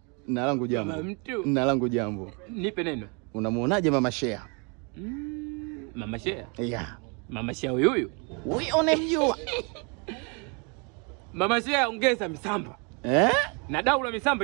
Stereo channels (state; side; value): quieter; left; 33.7 dB